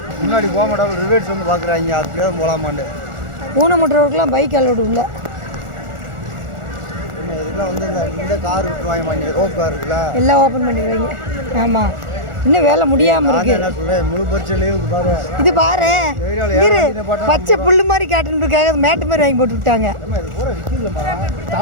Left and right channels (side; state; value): left; late; 1.4 ms